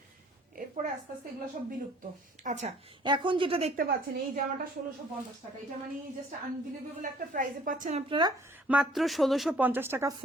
এরপরে আস্তে আস্তে এগুলো সব বিলুপ্ত। আচ্ছা, এখন যেটা দেখতে পাচ্ছেন এই জামাটা 1650 টাকা। এটা মানে জাস্ট আনবিলিভেবল একটা প্রাইসে পাচ্ছেন আপনারা, মাত্র 1650 টাকা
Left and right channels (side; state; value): both; normal; correlation 0.56